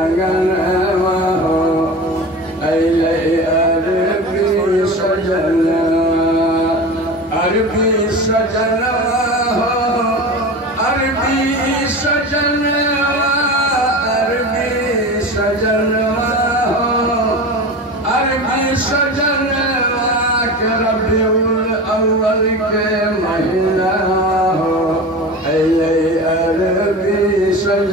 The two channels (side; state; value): both; normal; correlation 0.30